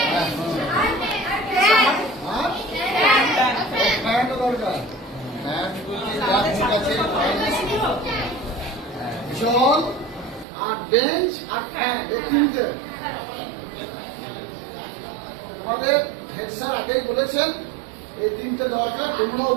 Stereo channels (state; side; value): drops out; left; at 10.5 s